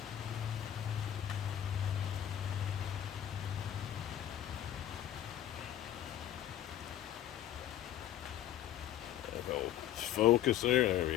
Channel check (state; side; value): quieter; right; 11.6 dB